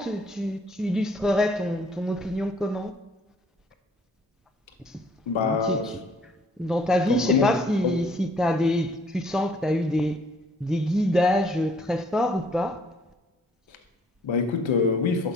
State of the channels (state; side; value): normal; both; correlation 0.60